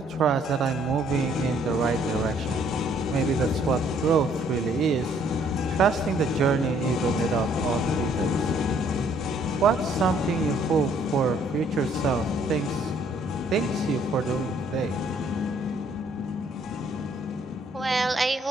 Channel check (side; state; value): both; normal; correlation 0.64